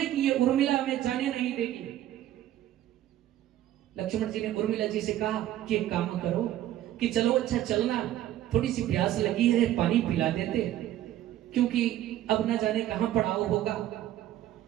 कि ये उर्मिला हमें जाने नहीं देगी। लक्ष्मण जी ने उर्मिला जी से कहा कि एक काम करो कि चलो अच्छा चलना, थोड़ी सी प्यास लगी है, पानी पिला देते, क्योंकि अब न जाने कहां पड़ाव होगा,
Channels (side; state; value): left; quieter; 12.9 dB